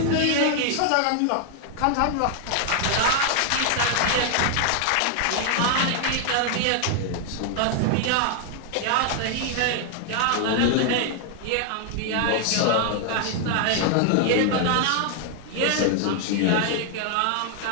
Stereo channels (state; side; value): different; both; correlation 0.00